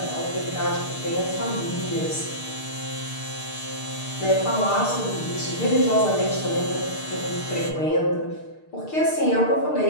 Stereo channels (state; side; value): late; right; 6.6 ms